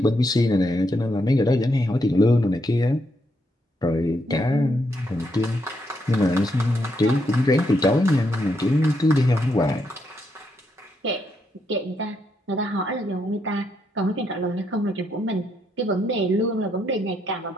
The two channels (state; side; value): normal; both; correlation 0.78